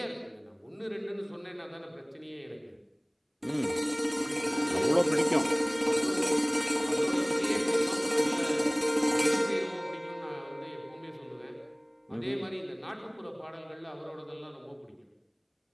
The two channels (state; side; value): identical; both; correlation 1.00